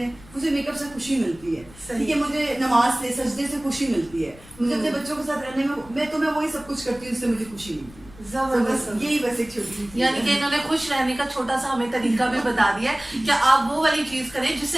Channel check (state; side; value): noise; left; rumble, 22 dB below the sound